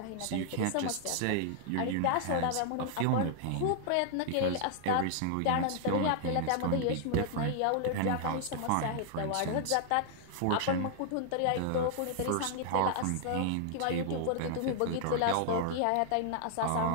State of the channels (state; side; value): different; both; correlation 0.00